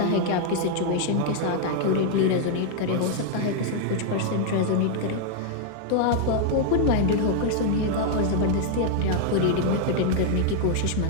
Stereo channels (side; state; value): both; different; correlation 0.00